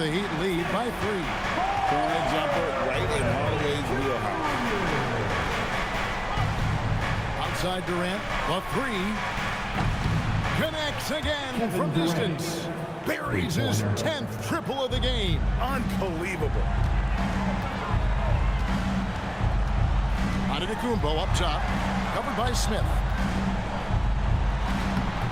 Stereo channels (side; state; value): both; identical; correlation 1.00